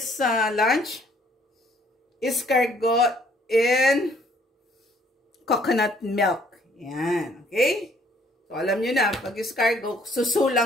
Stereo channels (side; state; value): both; normal; correlation 0.63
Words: lunch. Escargot in coconut milk. Yan, okay? So, alam nyo na, pag escargot,